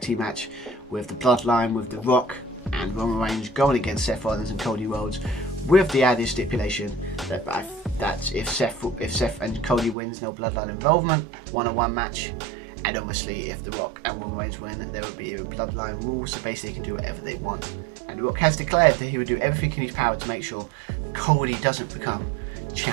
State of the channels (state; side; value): drops out; left; at 10.0 s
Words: team match with the Bloodline, with The Rock and Roman Reigns going against Seth Rollins and Cody Rhodes, with the added stipulation that if Seth and Cody wins, no Bloodline involvement, 1-on-1 match. And obviously, if The Rock and Roman Reigns win, there will be a bloodline rule, so basically they can do whatever they want. And The Rock has declared that he would do everything in his power to make sure Cody doesn't become